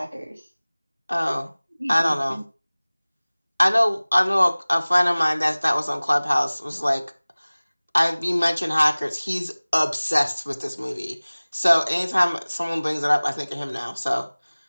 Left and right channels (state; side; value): inverted; both; correlation -1.00